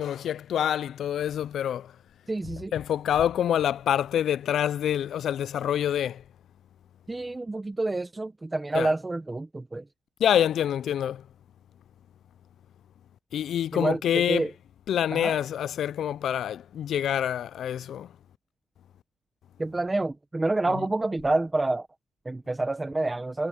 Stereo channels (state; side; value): quieter; right; 4.4 dB